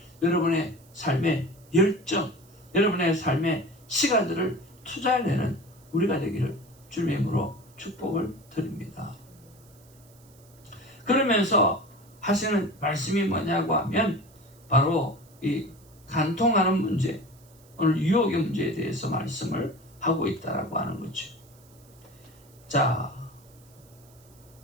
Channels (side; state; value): right; noise; hiss, 28 dB below the sound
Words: 여러분의 삶의 열정, 여러분의 삶의 시간들을 투자해내는 우리가 되기를 주님의 이름으로 축복을 드립니다. 그러면서 하시는 말씀이 뭐냐고 하면 바로 이 간통하는 문제, 오늘 유혹의 문제에 대해서 말씀을 하고 있다라고 하는 거죠. 자,